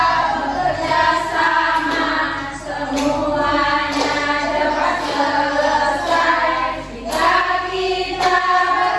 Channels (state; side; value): identical; both; correlation 1.00